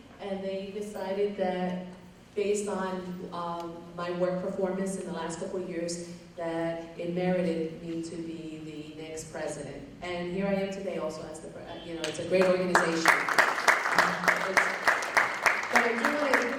and they decided that based on my work performance in the last couple of years, that it merited me to be the next president. And here I am today also as the, you know, it's a great organization. But I do want to, you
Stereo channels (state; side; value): identical; both; correlation 1.00